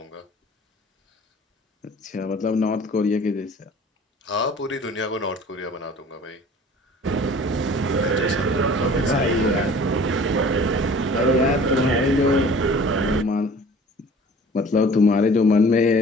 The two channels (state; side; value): normal; both; correlation 0.47